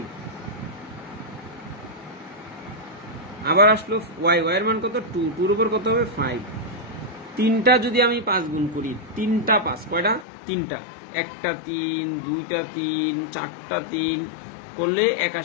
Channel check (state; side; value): drops out; right; at 10.2 s